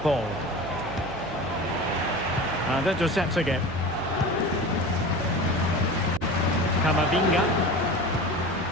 And intercepts again. Camavinga.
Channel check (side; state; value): right; noise; hum, 14 dB below the sound